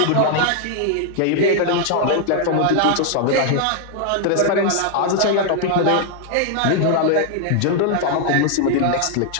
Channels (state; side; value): different; both; correlation 0.00